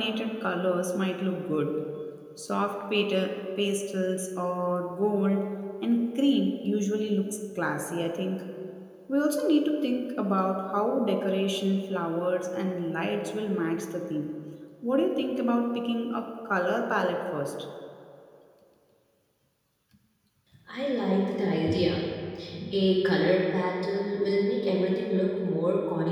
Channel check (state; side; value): identical; both; correlation 1.00